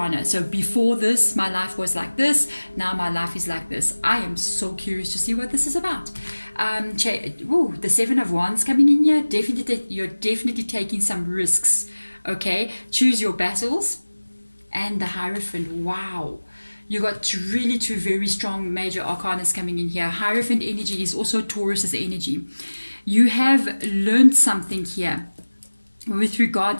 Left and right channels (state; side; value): inverted; both; correlation -1.00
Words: So before this, my life was like this. Now my life is like this. I am so curious to see what this is about. The Seven of Wands coming in here. You're definitely taking some risks. Okay, choose your battles. And the Hierophant. Wow. You got really two very strong major arcanas coming in here. Hierophant energy is also Taurus's energy. You have learned something here with